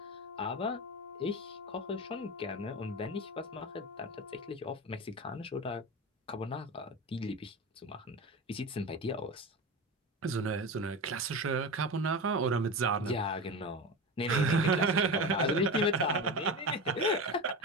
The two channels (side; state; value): both; normal; correlation 0.25